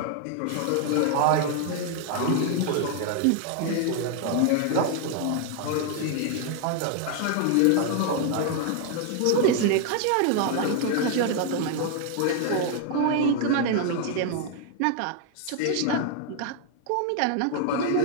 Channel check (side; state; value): both; different; correlation 0.00